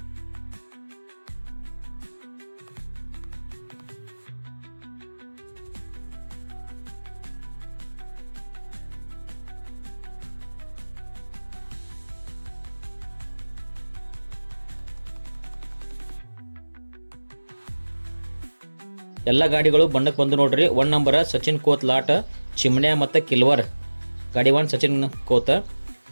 ಎಲ್ಲ ಗಾಡಿಗಳು ಬಣ್ಣಕ್ಕೆ ಬಂದು ನೋಡ್ರಿ. 1 ನಂಬರ್ ಸಚಿನ್ ಕೋತ್ ಲಾಟ್ ಚಿಮ್ಣ್ಯಾ ಮತ್ತು ಕಿಲ್ವರ್ ಗಾಡಿ 1 ಸಚಿನ್ ಕೋತ್.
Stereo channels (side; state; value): both; inverted; correlation -1.00